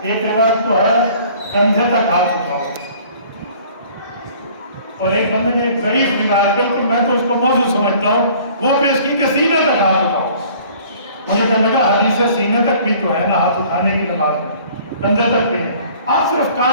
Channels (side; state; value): both; inverted; correlation -0.52